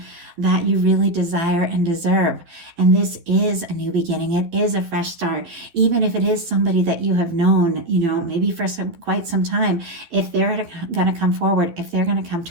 that you really desire and deserve. And this is a new beginning. It is a fresh start. Even if it is somebody that you have known, maybe for quite some time, if they're going to come forward, if they're going to come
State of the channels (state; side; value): late; left; 12 ms